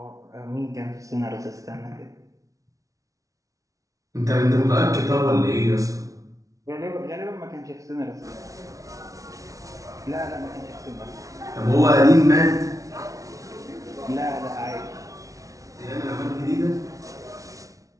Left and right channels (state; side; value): late; left; 0.17 ms